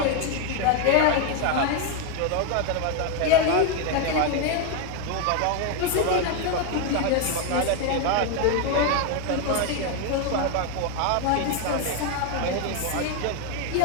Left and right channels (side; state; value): both; different; correlation 0.01